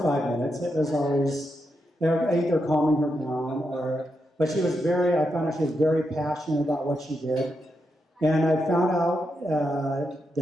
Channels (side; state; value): both; normal; correlation 0.84